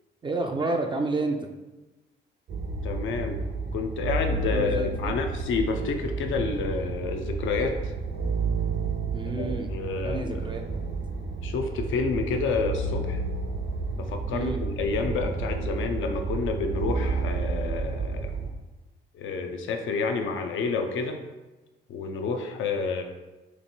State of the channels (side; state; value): both; normal; correlation 0.48